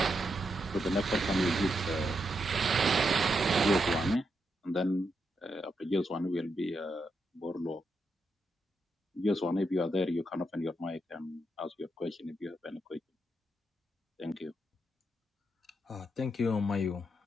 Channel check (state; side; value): normal; both; correlation 0.83